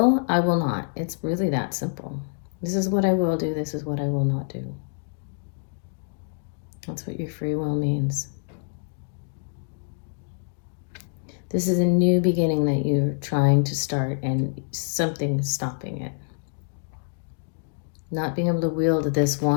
not. It's really that simple. This is what I will do. This is what I will not do. That's what your free will means. This is a new beginning that you're trying to start, and something is stopping it. Not being able to wield this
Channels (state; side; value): silent; right; digital silence